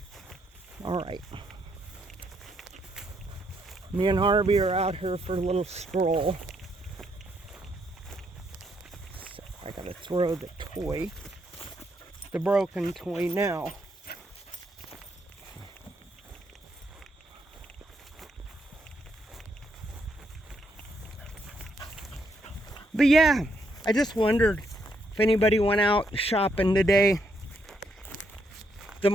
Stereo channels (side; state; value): both; normal; correlation 0.75